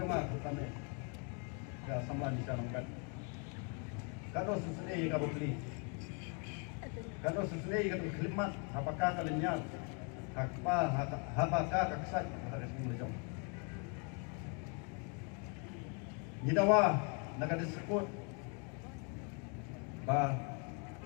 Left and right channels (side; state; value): right; quieter; 35.9 dB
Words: utame ka samlan di sana kan kado susune ka bokli kado susune ka khilmat apakah kalinya hakpa habaka ka ksat ka sini lejong nidawa nakadisebut ba